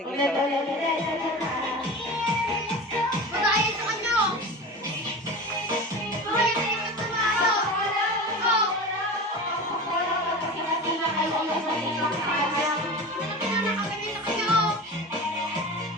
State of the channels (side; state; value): both; normal; correlation 0.31